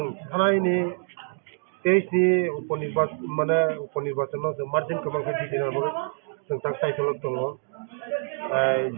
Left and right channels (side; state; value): left; silent; digital silence